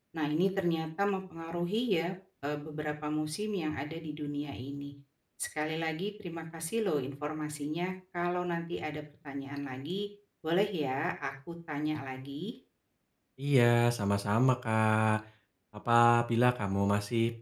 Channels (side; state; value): both; identical; correlation 1.00